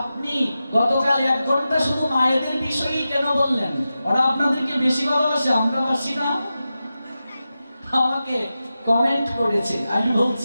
গতকাল 1 ঘন্টা শুধু মায়েদের বিষয়েই কেন বললেন? ওরা আপনাদেরকে বেশি ভালোবাসে, আমরা বাসি না? আমাকে কমেন্ট করেছে। আমি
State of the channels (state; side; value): inverted; both; correlation -0.92